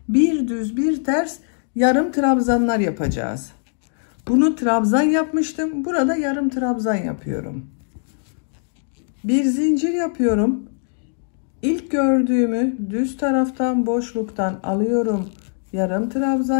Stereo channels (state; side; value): silent; right; digital silence